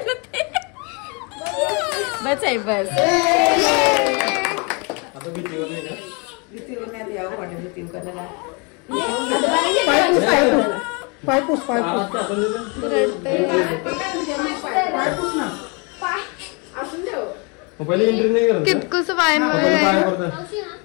ना ते. बस आहे बस. पायपूस कितकुस पाय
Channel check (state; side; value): quieter; right; 32.3 dB